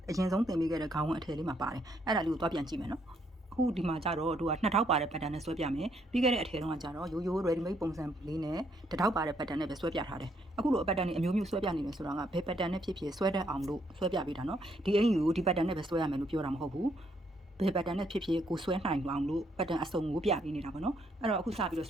ရင်ဆုံးသင်ပေးခဲ့တဲ့ခေါင်းဝင်အထည်လေးမှာပါတယ်အဲ့ဒါလေးကိုသွားပြန်ကြည့်မယ်နော်အခုဒီမှာကြတော့တို့က2000ပါတဲ့ pattern နဲ့ဆွဲပြမယ်ပြီးခဲ့တဲ့အထည်တုန်းကကြတော့ရိုးရိုး ready made ပုံစံလေးနဲ့1000ပါတဲ့ pattern နဲ့ပဲဆွဲပြထားတယ်အခုလို pattern တွေအမျိုးမျိုးဆွဲပြနေတယ်ဆိုတာကဘယ် pattern နဲ့ဖြစ်ဖြစ်ဆွဲတတ်အောင်လို့ဆွဲပြပေးတာနော်ဒီအင်ယူကိုဒီ pattern နဲ့ပဲဆွဲရမယ်လို့ပြောတာမဟုတ်ဘူးဘယ် pattern နဲ့ဖြစ်ဖြစ်ကိုဆွဲနိုင်အောင်လို့ pattern အစုံကိုပြပေးနေတာပေါ့နော်အဲ့တော့အခုစပြီးတော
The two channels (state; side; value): normal; both; correlation 0.72